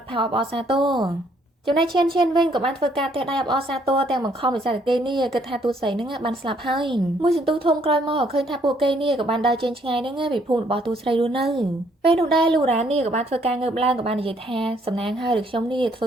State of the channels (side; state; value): both; normal; correlation 0.67